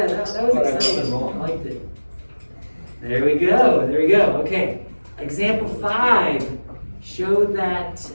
that was But I wasn't exciting. wrong. I liked it. There we go, okay. Example 5, show that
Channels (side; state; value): both; inverted; correlation -1.00